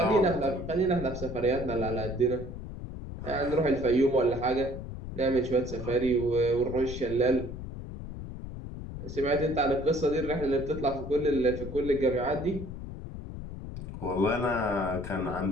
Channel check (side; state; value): left; noise; rumble, 9 dB below the sound